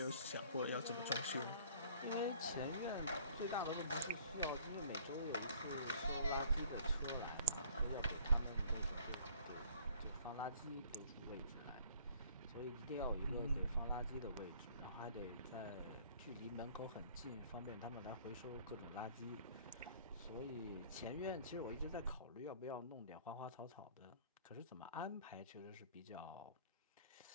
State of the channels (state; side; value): inverted; both; correlation -0.55